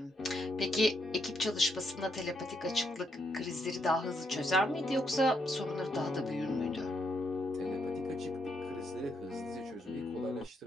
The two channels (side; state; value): both; normal; correlation 0.77